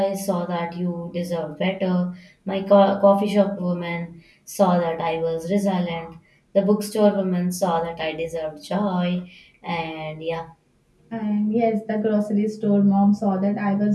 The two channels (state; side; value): identical; both; correlation 1.00